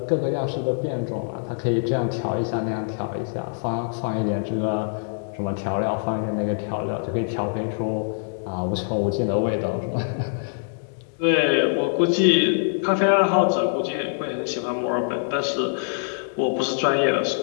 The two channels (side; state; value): right; silent; digital silence